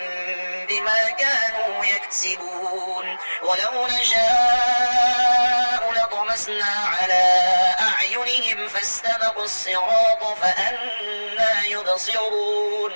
بما كانوا يكسبون ولو نشاء لطمسنا على أعينهم فاستبقوا الصراط فأنى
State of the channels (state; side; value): inverted; both; correlation -1.00